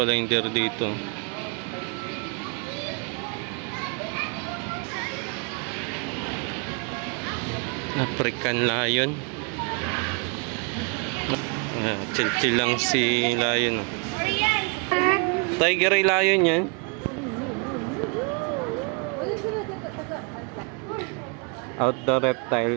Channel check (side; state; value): left; quieter; 35.1 dB